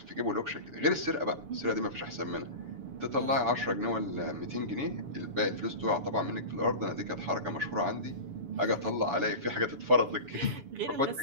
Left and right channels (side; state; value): left; late; 7.0 ms